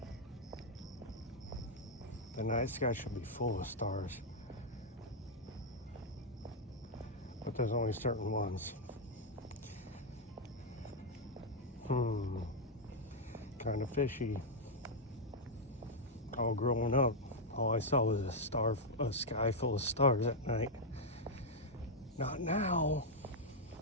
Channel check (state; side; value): normal; both; correlation -0.02